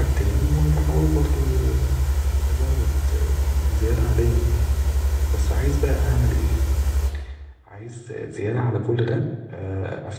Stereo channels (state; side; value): identical; both; correlation 1.00